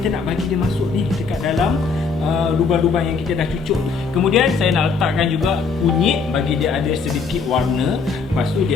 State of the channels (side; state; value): right; quieter; 5.0 dB